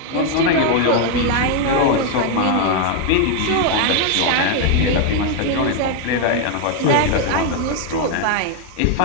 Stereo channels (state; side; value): different; both; correlation 0.01